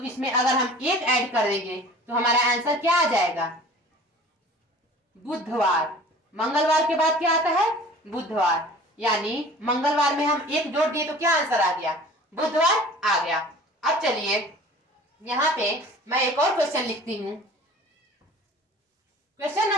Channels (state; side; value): normal; both; correlation 0.45